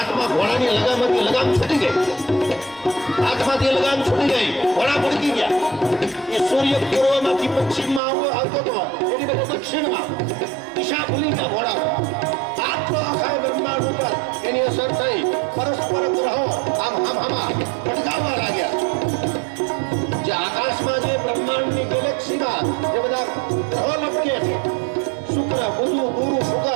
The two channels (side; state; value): left; drops out; at 8.0 s